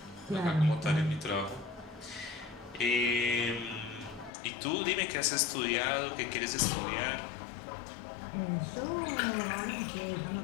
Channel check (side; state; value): right; drops out; at 4.3 s